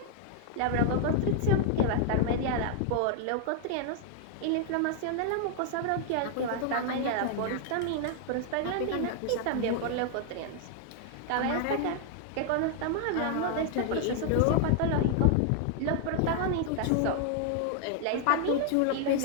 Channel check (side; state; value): both; different; correlation 0.00